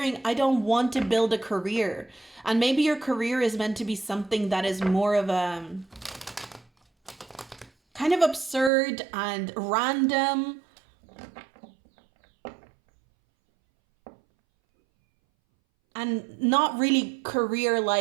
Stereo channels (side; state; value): left; drops out; at 8.7 s